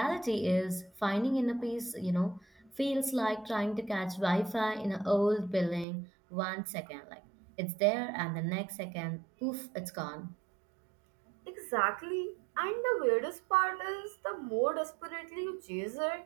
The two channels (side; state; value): left; drops out; at 5.9 s